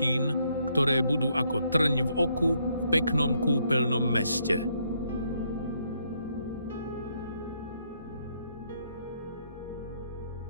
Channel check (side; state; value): both; inverted; correlation -0.73